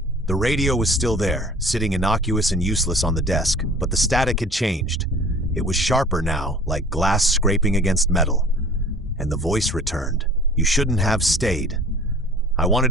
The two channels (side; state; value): both; normal; correlation 0.46